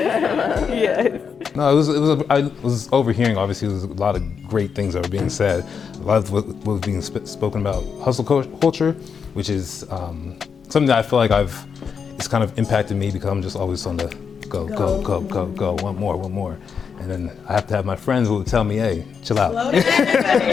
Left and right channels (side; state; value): right; quieter; 6.4 dB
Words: Yeah. No, I was overhearing, obviously, there was a lot of great things that were being said. A lot of what was being spoken about hustle culture, which is something that I feel like it's kind of impacted me because I'm just always on the go, one more. And then I have to have my friends who will tell me, hey, chill out.